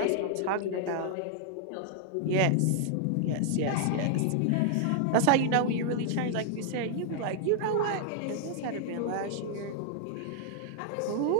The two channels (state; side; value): different; both; correlation 0.00